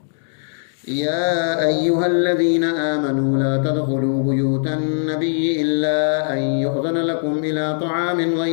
يا أيها الذين آمنوا لا تدخلوا بيوت النبي إلا أن يؤذن لكم إلى طعام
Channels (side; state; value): right; silent; digital silence